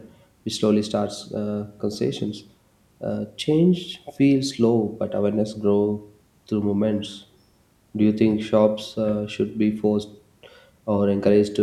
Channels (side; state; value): both; identical; correlation 1.00